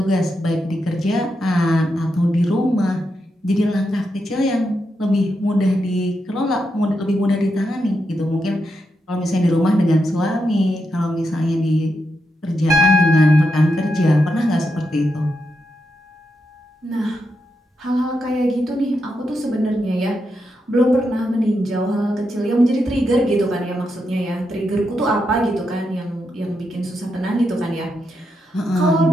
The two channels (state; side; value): normal; both; correlation 0.84